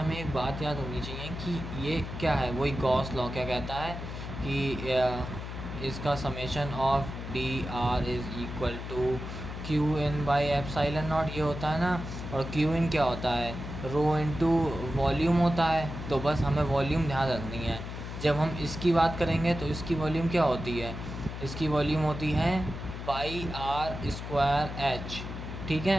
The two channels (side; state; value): left; noise; hum, 8 dB below the sound